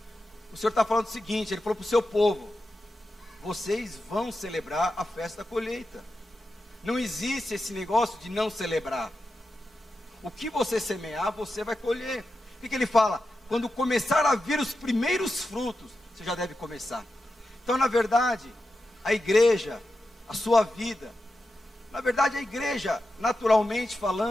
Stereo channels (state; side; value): normal; both; correlation 0.90